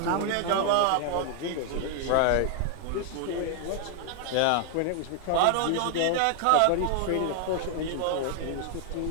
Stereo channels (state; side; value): different; both; correlation 0.00